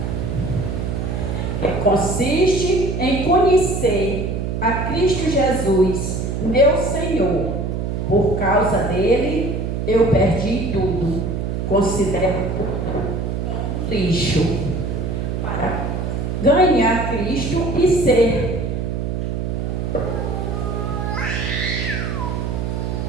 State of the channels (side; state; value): right; noise; hum, 2 dB below the sound